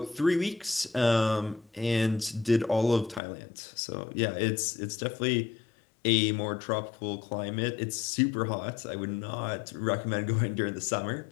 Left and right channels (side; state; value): right; drops out; at 3.2 s